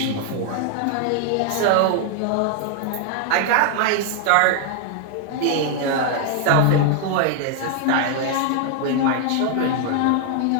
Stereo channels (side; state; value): both; different; correlation 0.00